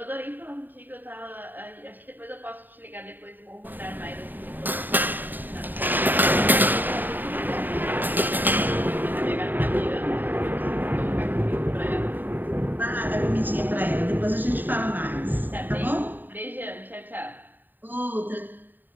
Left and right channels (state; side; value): late; left; 0.090 ms